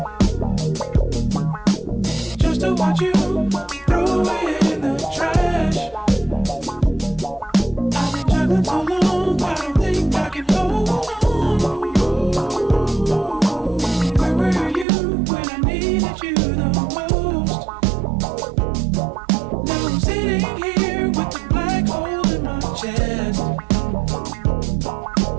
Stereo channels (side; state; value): left; drops out; at 14.9 s